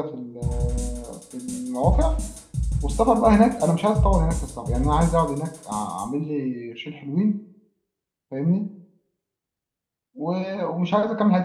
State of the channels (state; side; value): identical; both; correlation 1.00